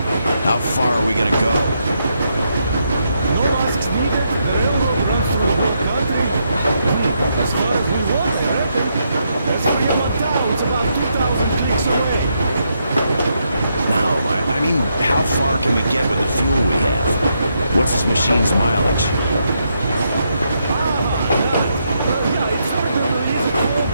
How far are we gonna go? No asks needed. The railroad runs through the whole country. As far as we want, I reckon. There's Fremont Town. It's about 2,000 clicks away. No, I mean, how far can we get with the fuel we have? What's this machine's mileage?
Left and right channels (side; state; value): both; inverted; correlation -0.79